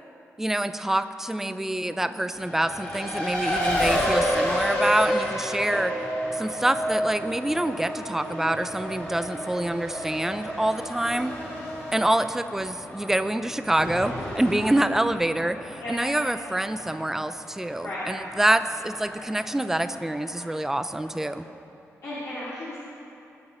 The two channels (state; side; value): normal; both; correlation 0.91